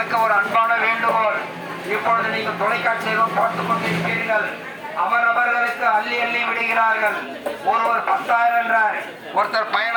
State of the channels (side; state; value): both; identical; correlation 1.00